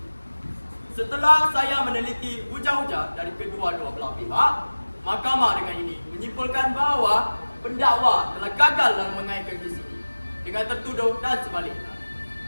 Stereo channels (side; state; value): both; inverted; correlation -1.00